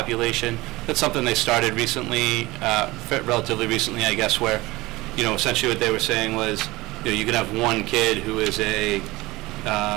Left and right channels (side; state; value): left; quieter; 20.4 dB